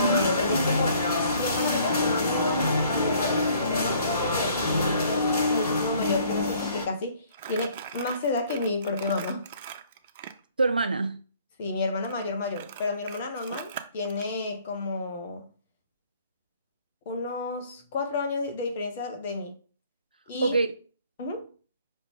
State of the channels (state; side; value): inverted; both; correlation -0.59